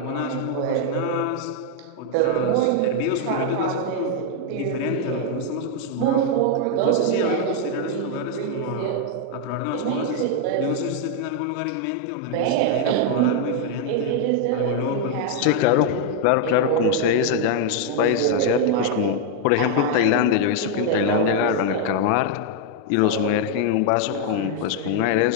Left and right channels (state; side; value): different; both; correlation 0.00